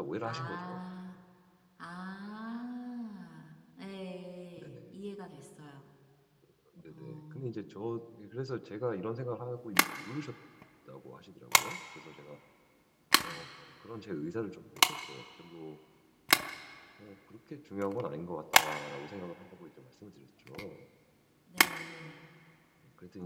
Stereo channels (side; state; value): both; identical; correlation 1.00